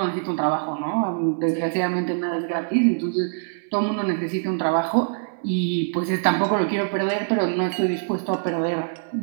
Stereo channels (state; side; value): silent; left; 60 dB below the other